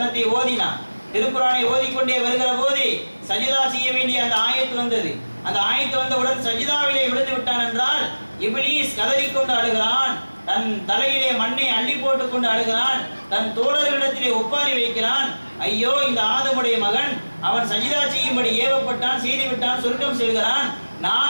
ஓதினான், திருக்குர்ஆனை ஓதிக்கொண்டே வருகிற போது சஜிதா செய்ய வேண்டிய அந்த ஆயத்து வந்தது. அந்த ஆயத்து வந்தவுடன் சஜிதாவிலே விழுந்து விட்டான் என்றால் இப்லீஸ் கதறிக்கொண்டு அழுகிறான், தன் தலையிலே மண்ணை அள்ளி போட்டுக் கொண்டு அழுகிறான், தன் தோழர்களிடத்திலே ஒப்பாரி வைக்கிறான். ஐயோ, இந்த ஆதமுடைய மகன், அவன் சஜிதா செய்யும்படி ஏவப்பட்டான், செய்துவிட்டான், சொர்க்கம் செல்கிறான்.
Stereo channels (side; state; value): both; inverted; correlation -1.00